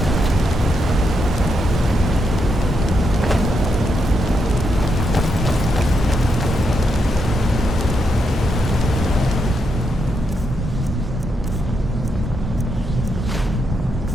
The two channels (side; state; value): both; normal; correlation 0.82